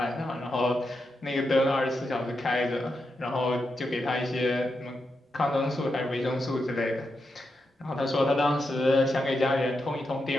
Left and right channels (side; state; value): both; normal; correlation 0.86